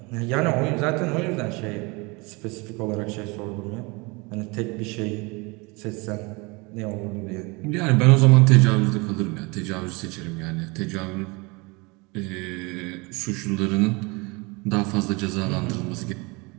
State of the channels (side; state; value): left; quieter; 27.0 dB